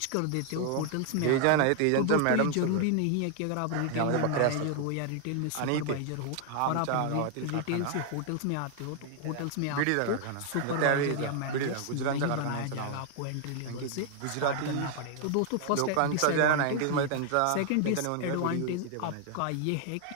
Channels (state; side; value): different; both; correlation 0.00